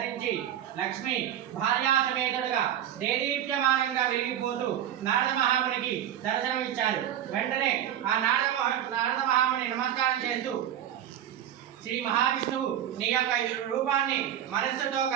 లక్ష్మి భార్యా సమేతుడుగా దేదీప్యమానంగా వెలిగిపోతూ నారద మహామునికి దర్శనమిచ్చారు. వెంటనే ఆ నారద మహాముని నమస్కారం చేస్తూ, శ్రీ మహావిష్ణువు నీ యొక్క రూపాన్ని మనస్సుతో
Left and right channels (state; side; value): quieter; left; 10.8 dB